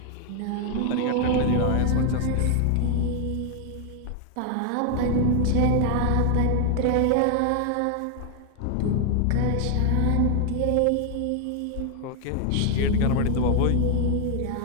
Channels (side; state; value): both; different; correlation 0.00